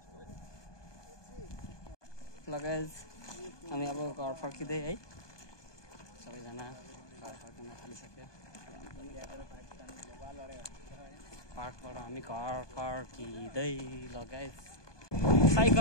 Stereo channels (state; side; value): late; right; 1.2 ms